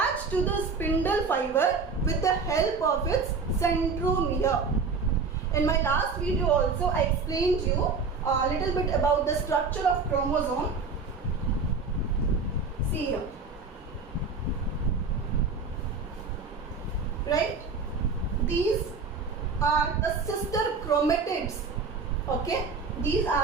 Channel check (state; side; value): quieter; left; 4.6 dB